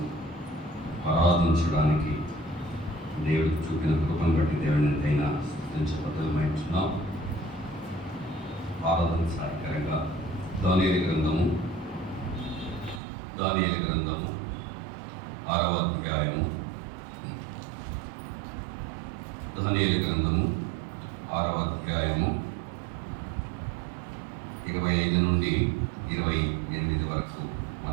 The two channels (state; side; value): drops out; left; at 13.0 s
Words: ఆరాధించడానికి దేవుడికి చూపిన కృపను బట్టి దేవుని ఎంతైనా స్తుతించబద్ధమైంటున్నాం. ఆరాధన సహాయకరంగా దానియేలు గ్రంథము 6వ అధ్యాయము దానియేలు గ్రంథము 6వ అధ్యాయము 25 నుండి 28 వరకు